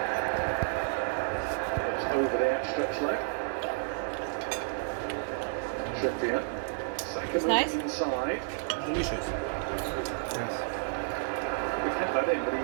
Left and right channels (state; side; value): silent; left; digital silence